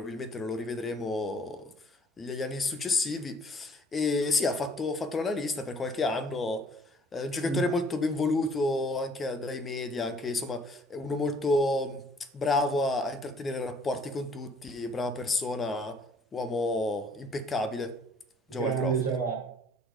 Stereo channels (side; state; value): both; normal; correlation 0.58